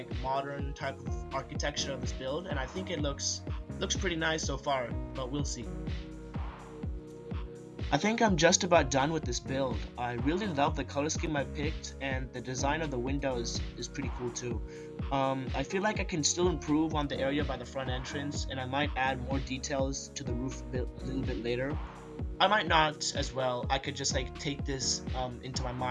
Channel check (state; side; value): identical; both; correlation 1.00